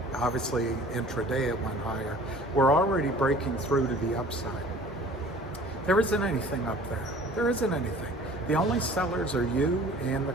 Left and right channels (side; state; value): both; normal; correlation 0.48